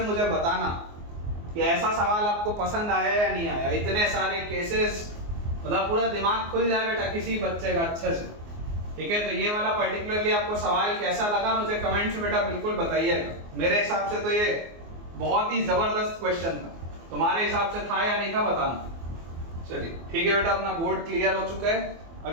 मुझे बताना कि ऐसा सवाल आपको पसंद आया या नहीं आया। इतने सारे केसेस, मतलब पूरा दिमाग खुल जाए बेटा किसी बच्चे का अच्छे से। ठीक है, तो ये वाला पर्टिकुलरली आपको सवाल कैसा लगा मुझे कमेंट से बेटा बिल्कुल बताइएगा। मेरे हिसाब से तो ये बहुत ही जबरदस्त क्वेश्चन था, तुम्हारे हिसाब से था या नहीं था बताना। चलिए ठीक है बेटा, अपना बोर्ड क्लियर हो चुका है।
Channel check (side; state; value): left; late; 24 ms